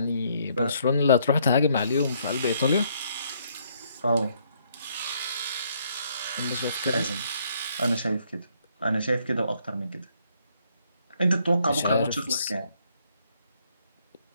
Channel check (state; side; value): inverted; both; correlation -0.69